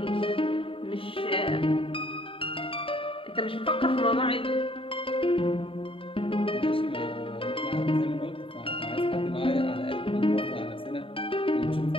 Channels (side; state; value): right; late; 0.26 ms